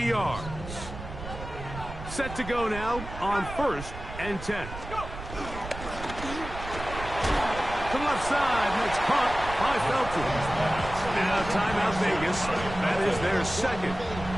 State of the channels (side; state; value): right; noise; rumble, 10 dB below the sound